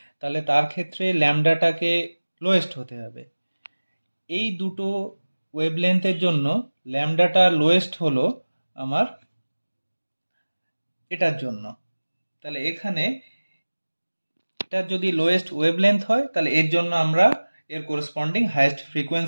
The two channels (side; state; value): both; inverted; correlation -1.00